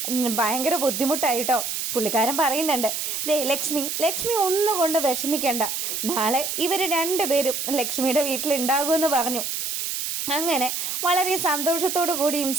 ഭയങ്കര ബുദ്ധിമുട്ടായിട്ടോ. പുള്ളിക്കാരൻ പറയുന്നുണ്ട്, ദേ ലക്ഷ്മി ഒന്നുകൊണ്ട് വിഷമിക്കണ്ട, നാളെ ഇവർ രണ്ടുപേരും ലക്ഷ്മിയുടെ വീട്ടിലുണ്ടാകുമെന്ന് പറഞ്ഞു. അങ്ങനെ വളരെ സന്തോഷത്തോടു കൂടിയും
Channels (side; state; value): right; noise; hiss, 3 dB below the sound